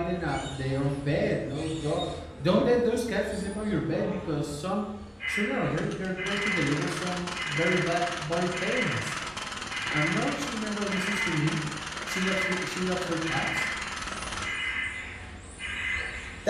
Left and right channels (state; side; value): identical; both; correlation 1.00